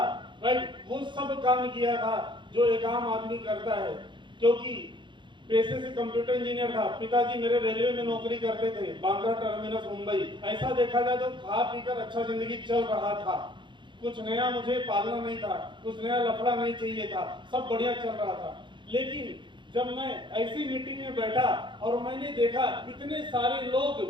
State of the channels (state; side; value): late; left; 0.23 ms